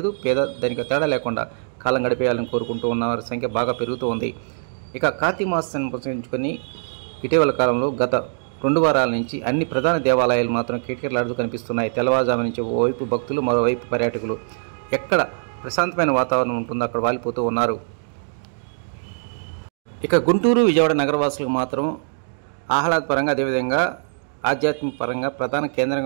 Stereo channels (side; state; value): left; silent; digital silence